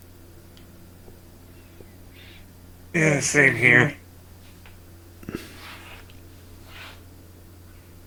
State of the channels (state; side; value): identical; both; correlation 1.00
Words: Yeah, same here.